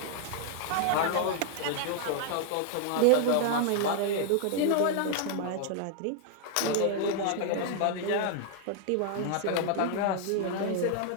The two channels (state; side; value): different; both; correlation 0.00